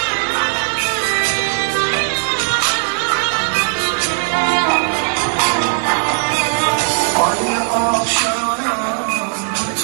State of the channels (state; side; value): silent; left; digital silence